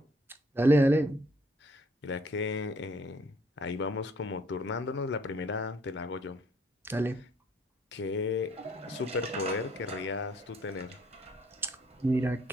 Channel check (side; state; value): both; normal; correlation 0.63